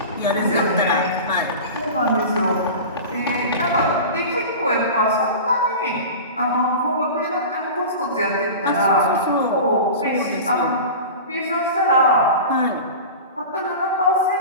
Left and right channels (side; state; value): both; inverted; correlation -0.32